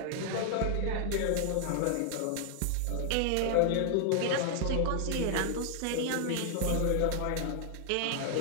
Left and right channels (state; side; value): different; both; correlation 0.00